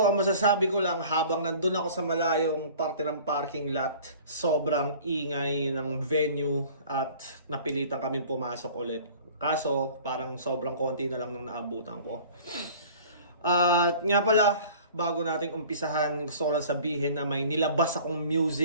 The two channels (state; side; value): inverted; both; correlation -0.46